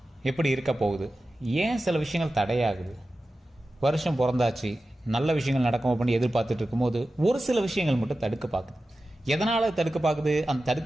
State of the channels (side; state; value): both; normal; correlation 0.94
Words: எப்படி இருக்க போகுது? ஏன் சில விஷயங்கள் தடையாகுது? வருஷம் பிறந்தாச்சு, நல்ல விஷயங்கள் நடக்கும் அப்படின்னு எதிர்பார்த்துட்டு இருக்கும்போது ஒரு சில விஷயங்கள் மட்டும் தடுக்க பார்க்குது. எதனால் தடுக்க பார்க்குது? அந்த